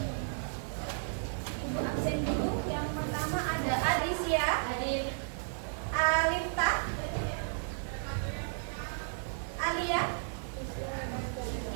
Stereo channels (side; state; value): left; silent; 55 dB below the other